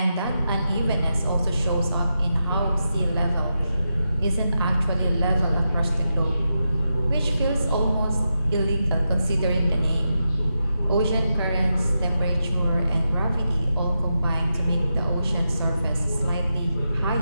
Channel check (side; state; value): both; inverted; correlation -0.88